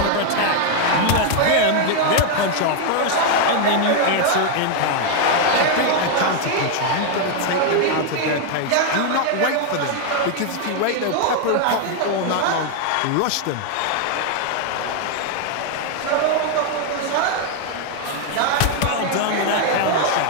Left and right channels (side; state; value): both; different; correlation 0.00